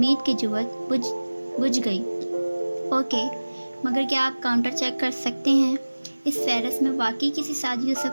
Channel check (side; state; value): both; inverted; correlation -1.00